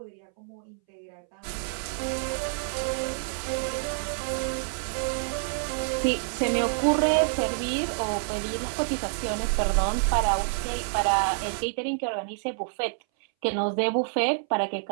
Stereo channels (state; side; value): silent; left; 60 dB below the other